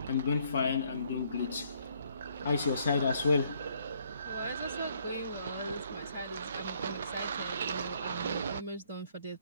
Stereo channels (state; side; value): inverted; both; correlation -0.67